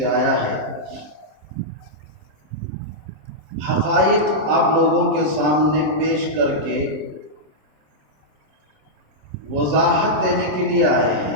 آیا ہے، حقائق آپ لوگوں کے سامنے پیش کر کے وضاحت دینے کے لیے آئے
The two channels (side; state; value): left; late; 27 ms